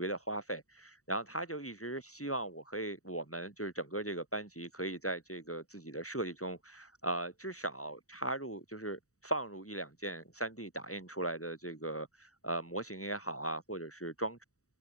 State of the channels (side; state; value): right; late; 0.65 ms